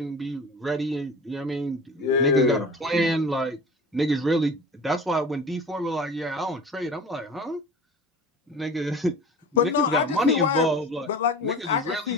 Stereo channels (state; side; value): normal; both; correlation 0.38